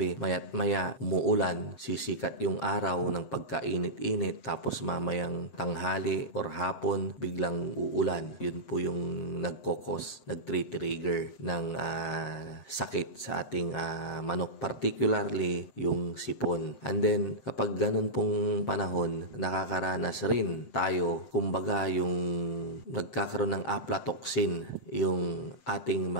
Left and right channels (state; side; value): late; right; 7.4 ms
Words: maya't maya umuulan, sisikat yung araw ng pagkainit-init, tapos mamayang tanghali or hapon, biglang uulan. Yun po yung nag-trigger ng sakit sa ating manok, particularly yung sipon. And then, kapag ganun pong panahon, nakakaranas rin tayo, kumbaga yung nagkakaroon ng aflatoxin yung ating